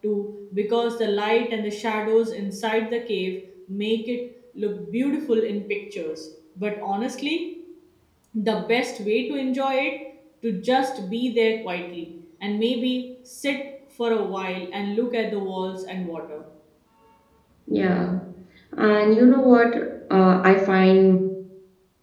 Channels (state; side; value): identical; both; correlation 1.00